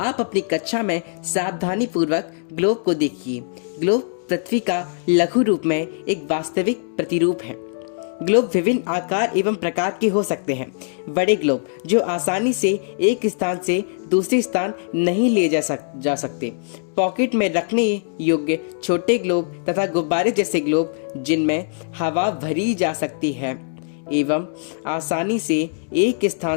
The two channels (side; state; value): right; silent; digital silence